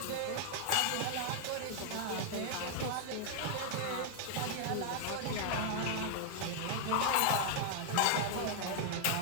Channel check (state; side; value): different; both; correlation 0.00